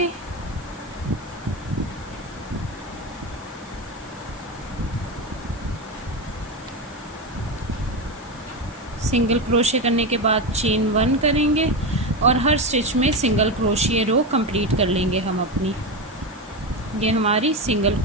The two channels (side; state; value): both; normal; correlation 0.16